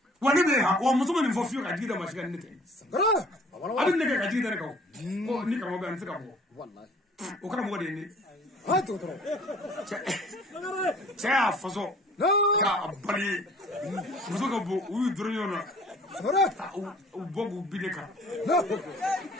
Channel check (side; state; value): both; normal; correlation 0.53